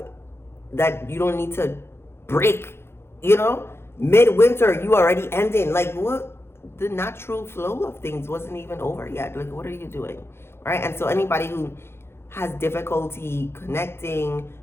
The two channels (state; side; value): late; right; 0.12 ms